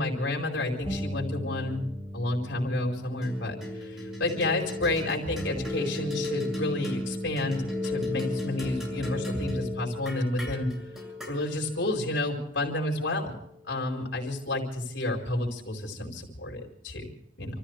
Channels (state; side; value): normal; both; correlation 0.48